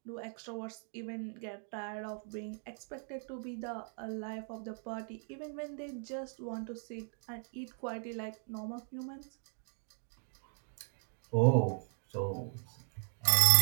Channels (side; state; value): left; silent; 53 dB below the other